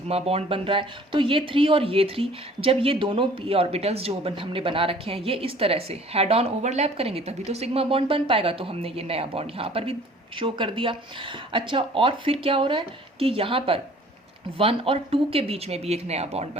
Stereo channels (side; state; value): both; normal; correlation 0.52